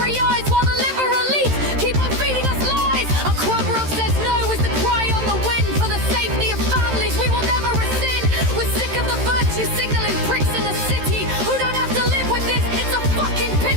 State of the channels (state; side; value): late; left; 13 ms